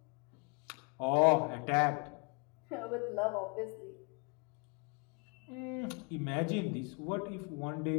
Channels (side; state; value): right; quieter; 34.7 dB